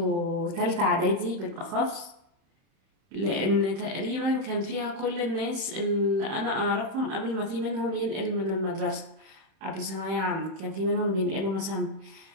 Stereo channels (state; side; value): late; left; 31 ms